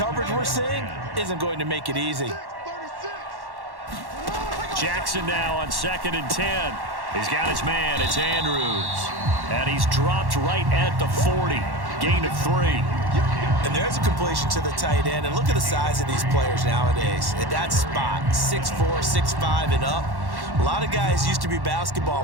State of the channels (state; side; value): late; left; 1.1 ms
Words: we're seeing isn't going to make it easy. Jackson now on 2nd and 10. He's got his man. It's Andrews. And he's dropped right at the 40. Gain of 3. And there's a completion to the tight end. And look at the size of these players nowadays. At that spot, 6'4", 6'5", and up. A lot of guys used to be